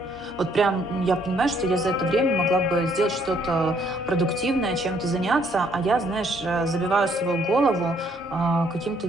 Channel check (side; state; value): both; normal; correlation 0.67